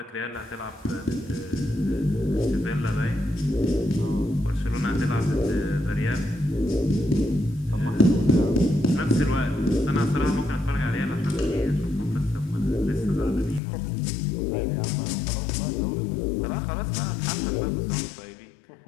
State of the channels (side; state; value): right; drops out; at 13.6 s